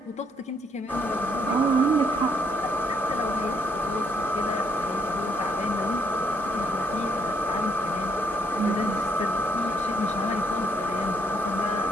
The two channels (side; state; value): both; normal; correlation 0.71